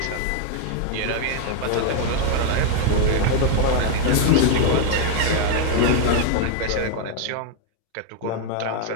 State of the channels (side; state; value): both; different; correlation 0.00